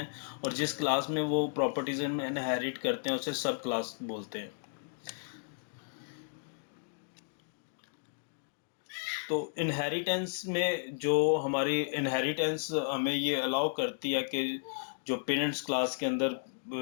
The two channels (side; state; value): right; silent; digital silence